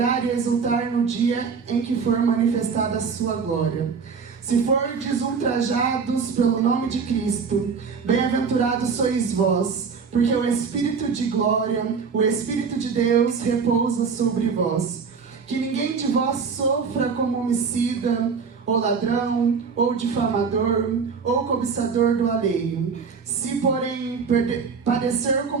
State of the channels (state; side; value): quieter; left; 5.6 dB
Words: e exultar no dia em que for manifestada a sua glória. Se fordes ultrajados pelo nome de Cristo, bem-aventurados sois vós, porque o Espírito de glória, o Espírito de Deus repousa sobre vós. Que ninguém de vós sofra como homicida, ou ladrão, ou difamador, ou cobiçador do alheio. Se, porém, padecer